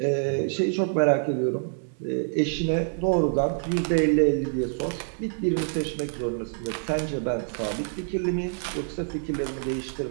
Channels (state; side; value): silent; left; digital silence